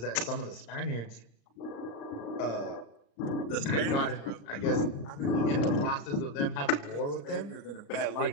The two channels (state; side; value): late; right; 34 ms